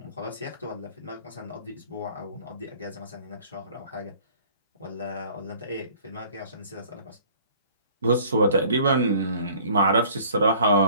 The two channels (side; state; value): both; inverted; correlation -0.53